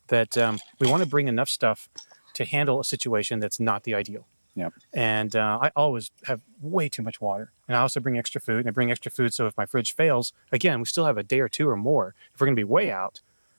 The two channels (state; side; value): inverted; both; correlation -1.00